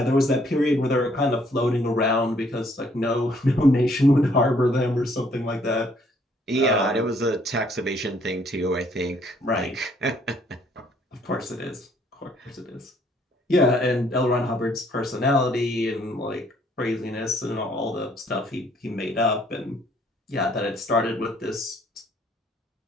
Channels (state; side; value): normal; both; correlation 0.64